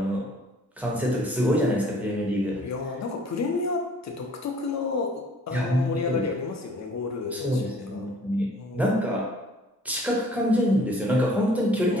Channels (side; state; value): both; normal; correlation 0.55